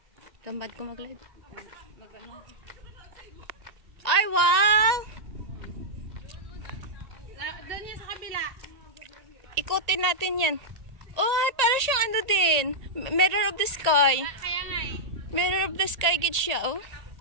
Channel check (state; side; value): late; left; 1.8 ms